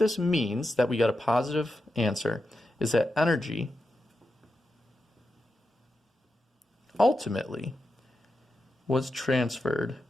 means, that we got a positive answer, is that energy ultimately was transferred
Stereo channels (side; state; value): both; normal; correlation 0.89